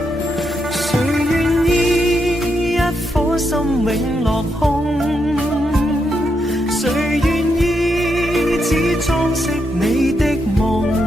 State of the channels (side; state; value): both; normal; correlation 0.82